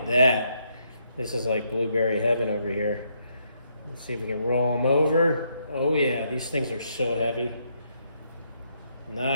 that. This is like blueberry heaven over here. Let's see if we can roll them over. Oh yeah, these things are so heavy.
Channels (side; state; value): both; inverted; correlation -0.75